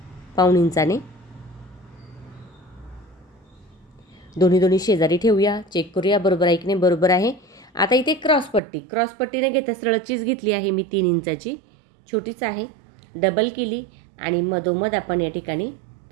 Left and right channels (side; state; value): left; drops out; at 8.6 s